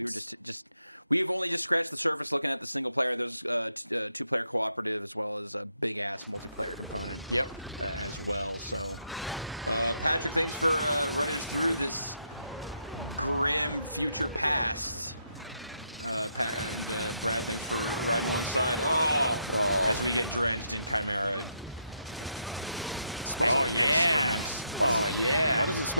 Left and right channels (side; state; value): both; inverted; correlation -0.78